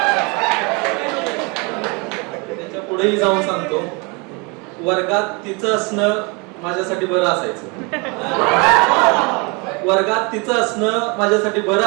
त्याच्या पुढेही जाऊन सांगतो, वर्गात तिचं असणं माझ्यासाठी बरं असायचं. वर्गात तिचं असणं माझ्यासाठी बरं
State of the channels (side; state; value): left; quieter; 30.1 dB